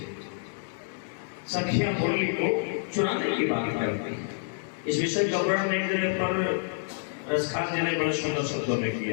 सखियां मुरली को चुराने की बात करती हैं। इस विषय का वर्णन एक जगह पर रसखान जी ने बड़े सुंदर शब्दों में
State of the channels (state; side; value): silent; right; digital silence